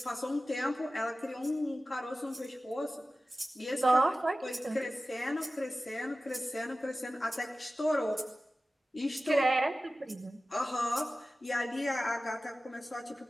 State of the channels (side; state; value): both; normal; correlation 0.95